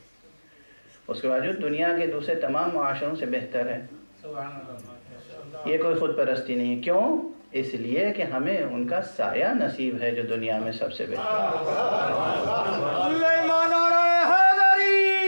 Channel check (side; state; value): both; inverted; correlation -1.00